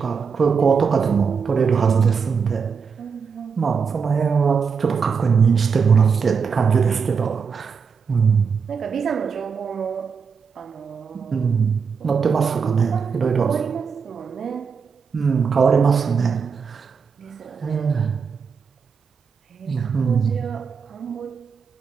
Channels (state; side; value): quieter; left; 5.9 dB